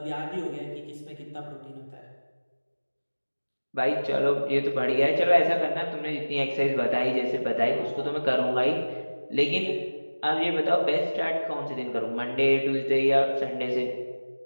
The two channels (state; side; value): inverted; both; correlation -1.00